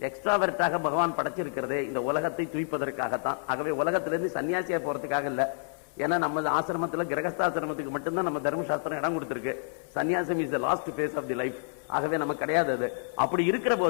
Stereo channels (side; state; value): right; silent; digital silence